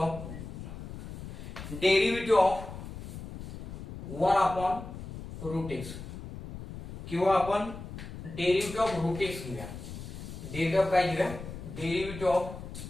derivative of 1 upon root x किंवा आपण डेरिव्हेटिव्ह ऑफ रूट एक्स घेऊया डेरिव्हेटिव्ह ऑफ काय घेऊया डेरिव्हेटिव्ह ऑफ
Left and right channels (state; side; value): noise; left; rumble, 10 dB below the sound